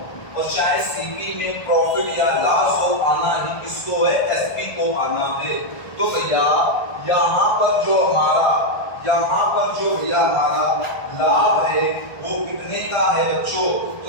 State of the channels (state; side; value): late; right; 1.5 ms